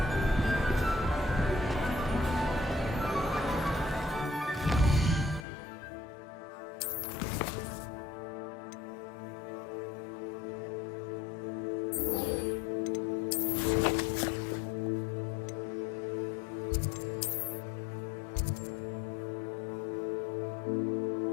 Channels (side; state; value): right; drops out; at 5.5 s